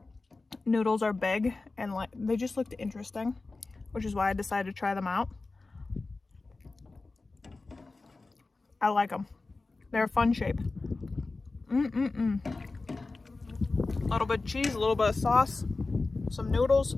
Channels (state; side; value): quieter; right; 3.6 dB